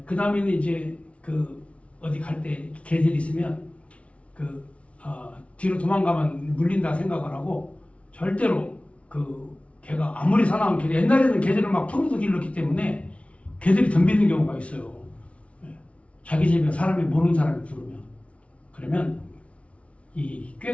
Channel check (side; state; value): right; late; 0.063 ms